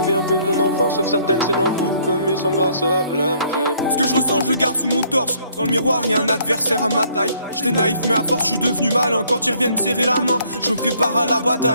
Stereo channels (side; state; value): both; inverted; correlation -0.64